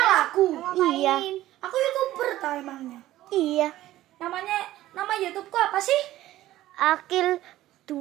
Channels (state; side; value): quieter; left; 14.9 dB